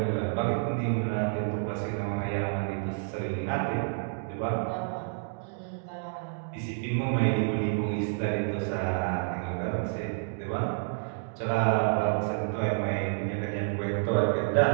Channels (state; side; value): silent; left; digital silence